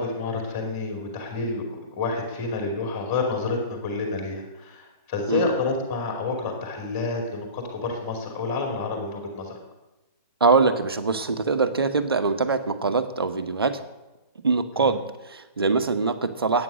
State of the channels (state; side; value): inverted; both; correlation -0.38